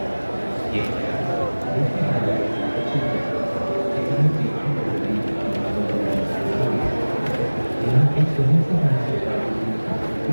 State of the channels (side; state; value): both; inverted; correlation -1.00